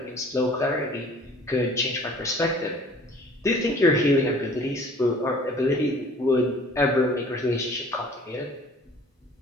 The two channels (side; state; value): both; normal; correlation 0.51